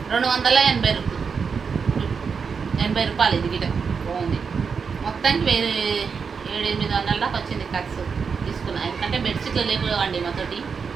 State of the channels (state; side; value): quieter; left; 5.8 dB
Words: 280 రూపాయలు, ఇది గిట బాగుంది. మొత్తానికి 700-800 దాకా వచ్చింది ఖర్చు తీసుకున్నా. ఎందుకంటే బెడ్షీట్లు లేకపోవండి, మాతోటి